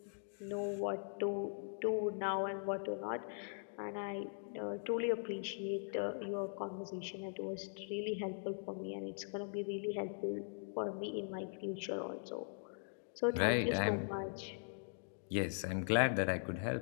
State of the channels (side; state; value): right; silent; digital silence